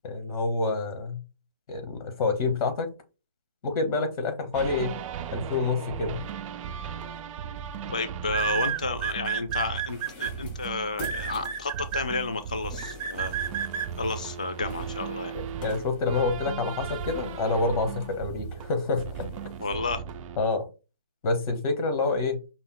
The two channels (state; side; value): inverted; both; correlation -0.40